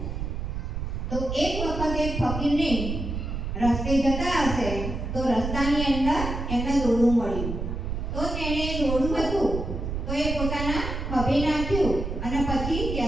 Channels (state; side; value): noise; right; rumble, 4 dB below the sound